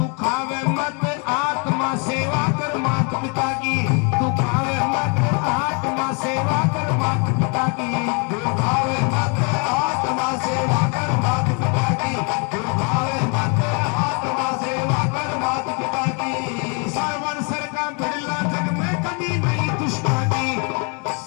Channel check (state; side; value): quieter; right; 35.1 dB